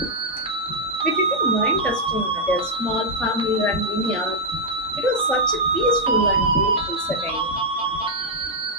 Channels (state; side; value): normal; both; correlation -0.03